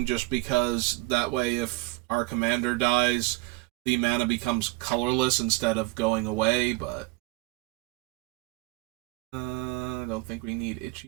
just because that way if our commander dies, the mana becomes colorless instead of going away, but I don't think we need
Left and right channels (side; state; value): left; quieter; 22.2 dB